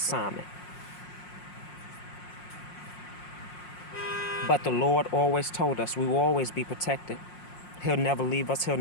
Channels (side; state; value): right; late; 5.6 ms